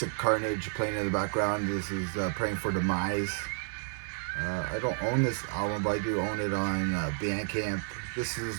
Carnage playing in the background. This is Praying for Demise. I don't own this album, but I do own it on Bandcamp. This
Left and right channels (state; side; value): silent; left; 57 dB below the other